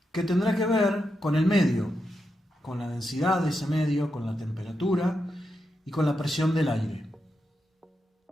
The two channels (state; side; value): normal; both; correlation 0.86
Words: que tendrá que ver con el medio, con la densidad de ese medio, con la temperatura y con la presión del aire.